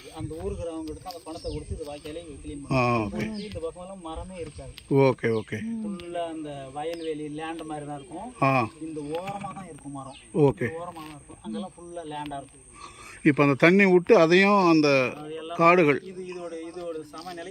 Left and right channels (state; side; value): identical; both; correlation 1.00